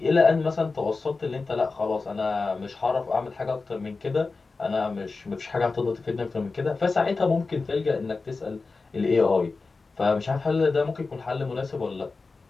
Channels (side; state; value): right; quieter; 4.0 dB